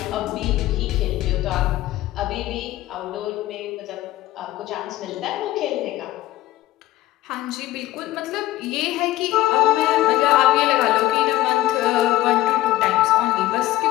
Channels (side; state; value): right; quieter; 15.5 dB